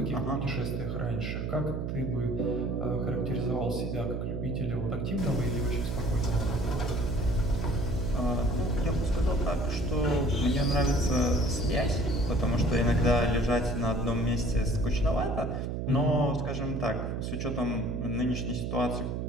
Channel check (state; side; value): noise; right; hum, 2 dB below the sound